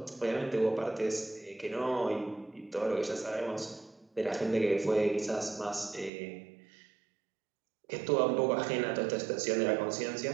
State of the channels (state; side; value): drops out; left; at 6.1 s